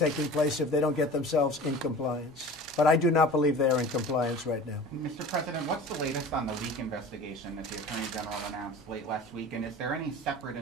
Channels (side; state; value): both; normal; correlation 0.39